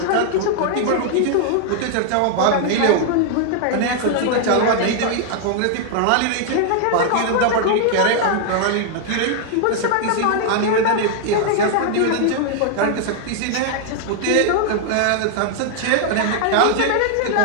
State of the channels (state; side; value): different; both; correlation 0.00